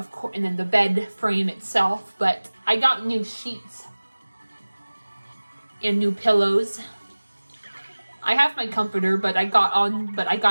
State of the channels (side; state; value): both; inverted; correlation -1.00